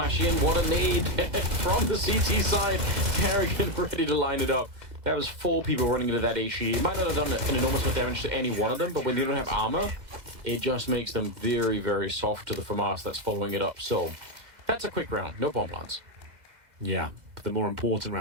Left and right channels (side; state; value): left; late; 2.0 ms